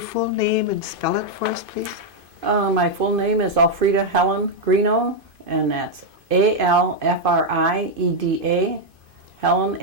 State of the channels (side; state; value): left; late; 2.5 ms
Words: full name and spell it for us, please? My full name is Alfrieda Helen Grignion, and that's Alfrieda, Helen,